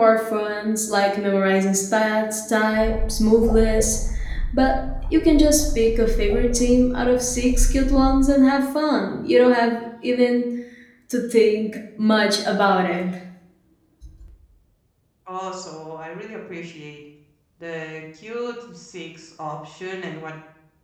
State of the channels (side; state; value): both; identical; correlation 1.00